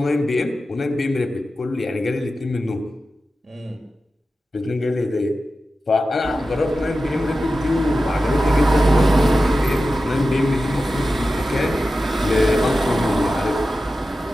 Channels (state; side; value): normal; both; correlation 0.93